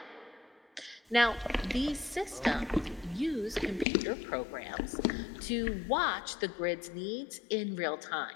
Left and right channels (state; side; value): drops out; right; at 3.9 s